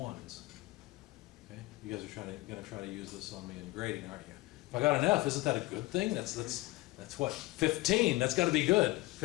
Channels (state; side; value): quieter; right; 20.4 dB